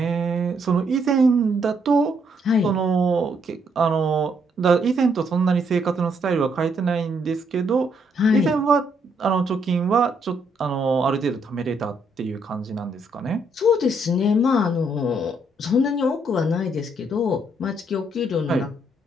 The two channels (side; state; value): both; normal; correlation 0.72